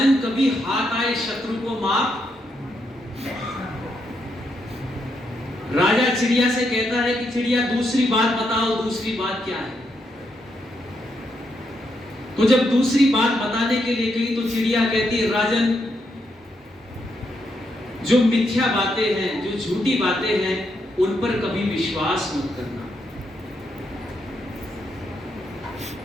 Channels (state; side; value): normal; both; correlation 0.80